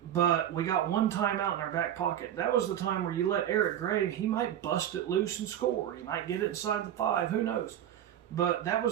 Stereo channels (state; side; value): quieter; left; 10.8 dB